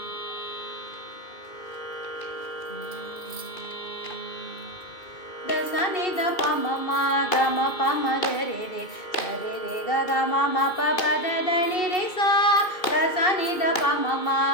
दसनि द पम मा ग म प म ग रे रे स रे रे ग ग म म प प द द नि रे सा दसनि द प म मा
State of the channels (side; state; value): right; late; 2.7 ms